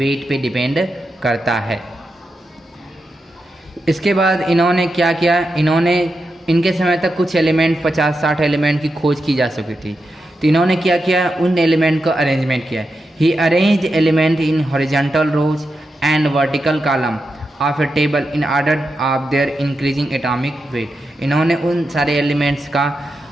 पे डिपेंड करता है। इसके बाद इन्होंने क्या किया, इनके समय तक कुछ एलिमेंट 50-60 एलिमेंट की खोज की जा सकी थी, तो इन्होंने क्या किया, उन एलिमेंट का अरेंजमेंट किया। He arrange element in horizontal rows and vertical column of a table in order of their increasing atomic weight. इन्होंने उन सारे एलिमेंट्स का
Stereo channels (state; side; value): normal; both; correlation 0.88